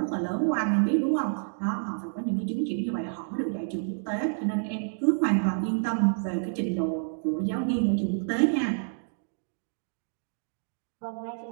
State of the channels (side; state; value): left; silent; digital silence